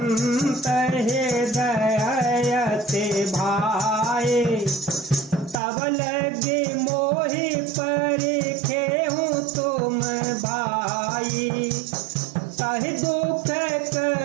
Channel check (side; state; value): left; drops out; at 5.6 s